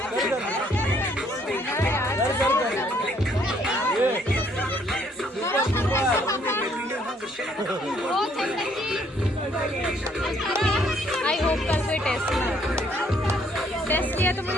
ये आई होप कल कोई टेस्ट किया तो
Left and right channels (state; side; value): normal; both; correlation 0.66